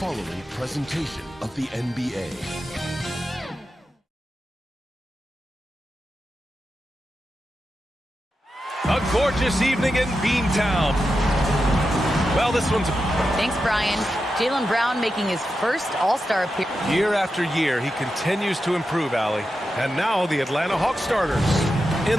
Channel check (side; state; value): both; normal; correlation 0.89